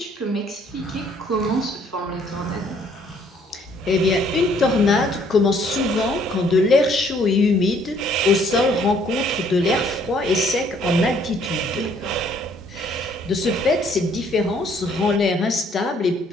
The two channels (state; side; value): normal; both; correlation 0.63